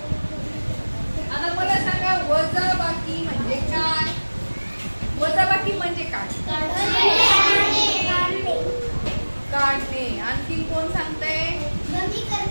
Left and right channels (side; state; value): both; inverted; correlation -1.00